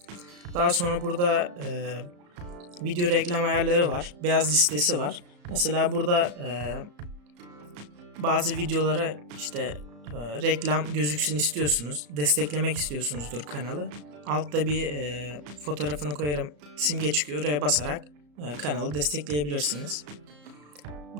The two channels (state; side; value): late; left; 34 ms